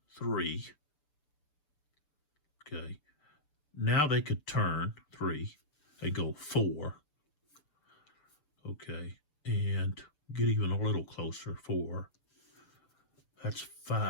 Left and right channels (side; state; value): right; late; 6.8 ms